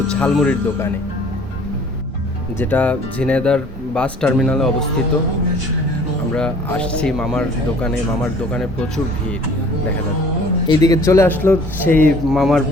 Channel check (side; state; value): both; normal; correlation 0.52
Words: ঝালমুড়ির দোকানে, যেটা ঝিনাইদহর বাস টার্মিনালে অবস্থিত। আমরা আসছি মামার দোকানে প্রচুর ভিড় দেখা যাচ্ছে। এইদিকে চলে আসলো সেই মামার